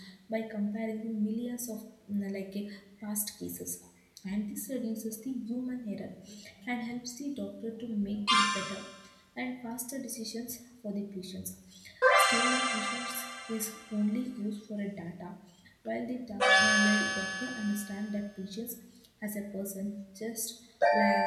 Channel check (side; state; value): both; identical; correlation 1.00